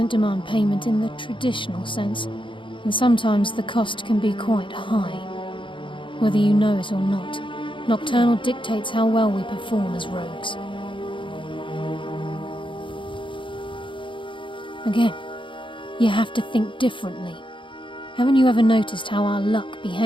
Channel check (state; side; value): late; right; 0.24 ms